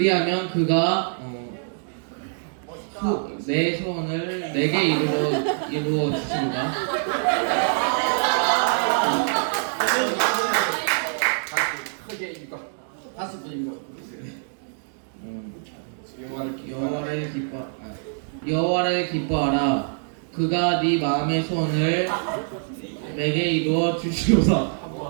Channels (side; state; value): left; silent; digital silence